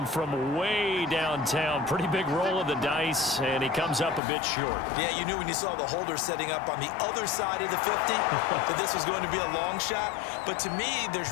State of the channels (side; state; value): right; drops out; at 4.2 s